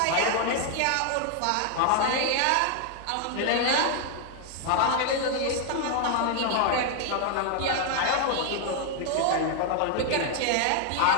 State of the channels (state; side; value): different; both; correlation 0.00